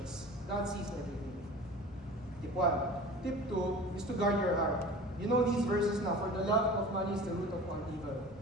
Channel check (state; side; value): normal; both; correlation 0.38